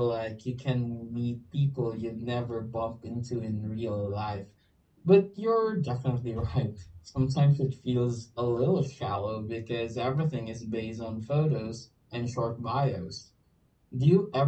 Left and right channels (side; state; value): both; identical; correlation 1.00